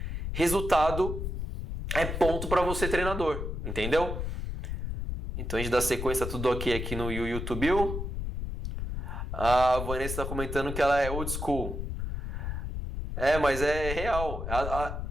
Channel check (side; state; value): left; noise; rumble, 4 dB below the sound